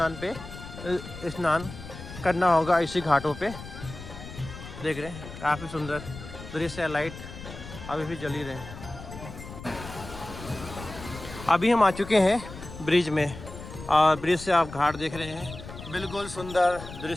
करना होगा, इसी घाटों पे। देख रहे हैं काफ़ी सुंदर दृश्य। लाइट अभी भी जल ही रहे हैं। अभी हम आ चुके हैं ब्रिज में और ब्रिज से आप घाट देख रहे हैं। बिल्कुल सुंदर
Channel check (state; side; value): noise; left; rumble, 13 dB below the sound